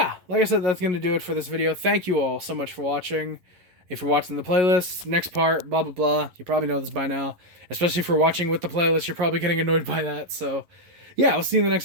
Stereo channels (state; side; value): late; left; 11 ms